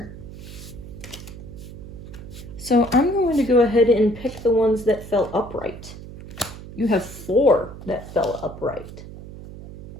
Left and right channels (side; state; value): right; noise; hum, 13 dB below the sound